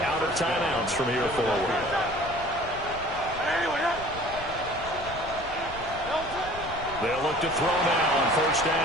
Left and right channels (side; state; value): left; noise; rumble, 14 dB below the sound